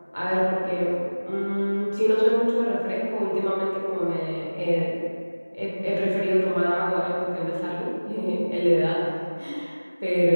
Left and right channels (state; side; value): inverted; both; correlation -1.00